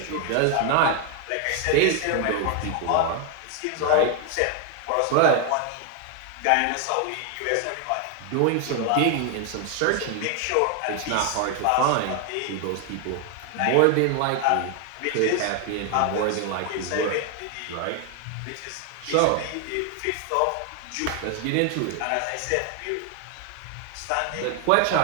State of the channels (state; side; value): different; both; correlation 0.01